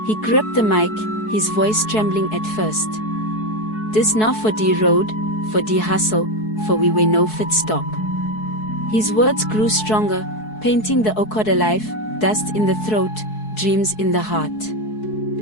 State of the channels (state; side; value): late; right; 4.7 ms